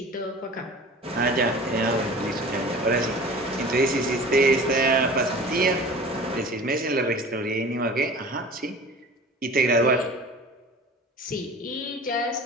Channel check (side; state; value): both; normal; correlation 0.40